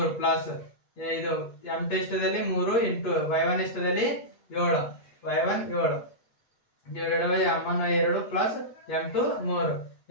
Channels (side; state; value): right; late; 8.3 ms